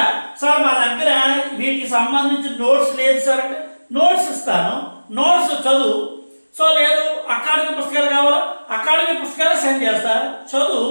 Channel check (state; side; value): inverted; both; correlation -1.00